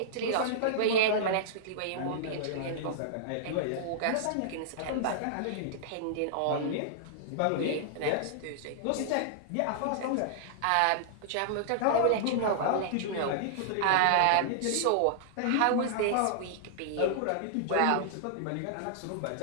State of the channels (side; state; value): both; different; correlation -0.01